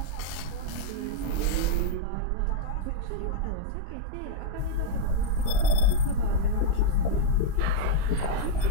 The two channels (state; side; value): different; both; correlation -0.01